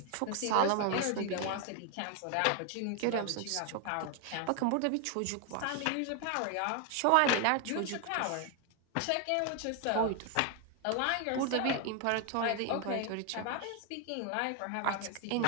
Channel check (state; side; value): different; both; correlation 0.01